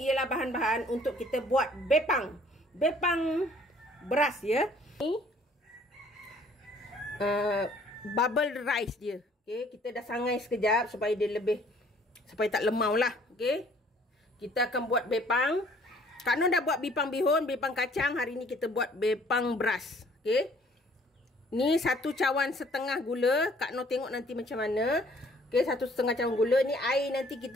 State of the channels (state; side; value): normal; both; correlation 0.58